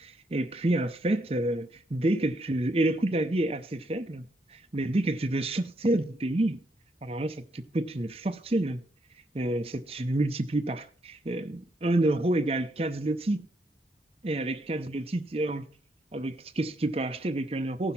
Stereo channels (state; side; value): normal; both; correlation 0.76